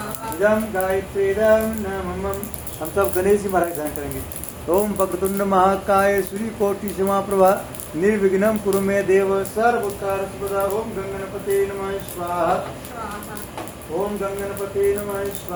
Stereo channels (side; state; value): both; identical; correlation 1.00